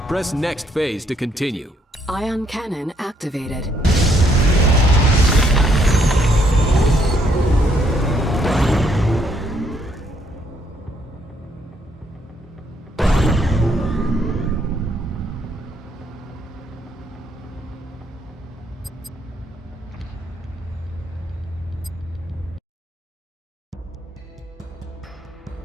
Press next phase to continue. Ion cannon activated.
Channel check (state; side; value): normal; both; correlation 0.70